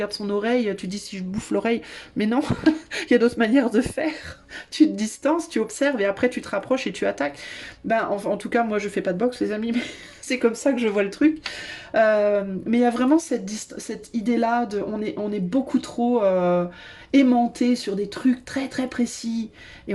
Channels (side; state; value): both; identical; correlation 1.00